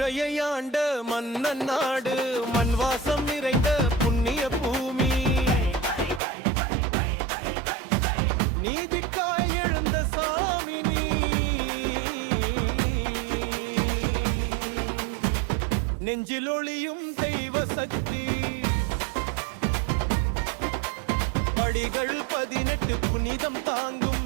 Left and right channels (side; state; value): left; drops out; at 6.2 s